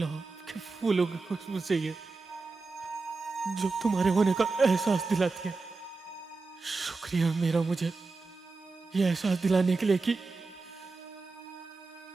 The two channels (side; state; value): left; quieter; 3.9 dB